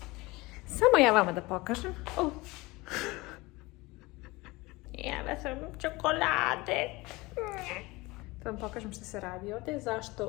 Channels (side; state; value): right; quieter; 22.3 dB